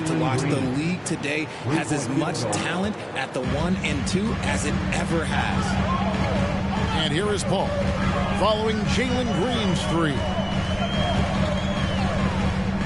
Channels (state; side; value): identical; both; correlation 1.00